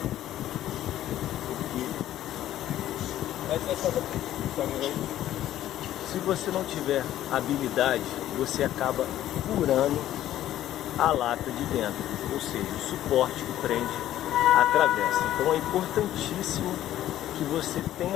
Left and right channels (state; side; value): quieter; right; 12.8 dB